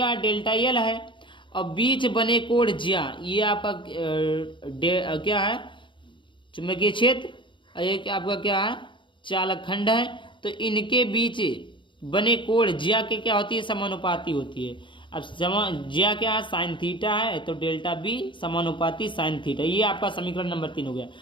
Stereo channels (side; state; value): right; late; 0.24 ms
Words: है, डेल्टा एल है। और बीच बने कोण ज्या, ये आपका क्या है, चुंबकीय क्षेत्र। ये आपका क्या है, चालक खंड है। तो इनके बीच बने कोण ज्या के क्या होती है, समानुपाती होती है। अब ज्या क्या है, साइन थीटा है, तो डेल्टा बी समानुपाती साइन थीटा। ये आपका समीकरण नंबर 3 हो गया।